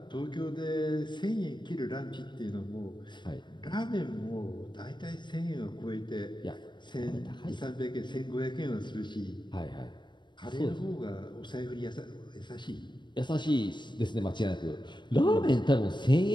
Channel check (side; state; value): right; late; 0.22 ms